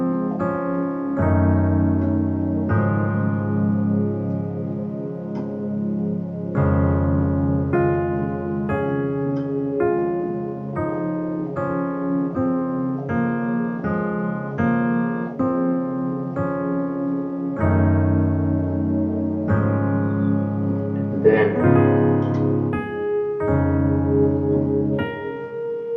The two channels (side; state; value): both; identical; correlation 1.00